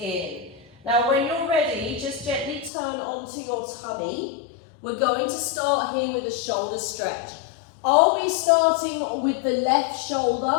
Now when you're ready, just gently turn onto your tummy. We're going to start here with a shoulder stretch. I'll be starting with the left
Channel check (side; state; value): right; drops out; at 2.7 s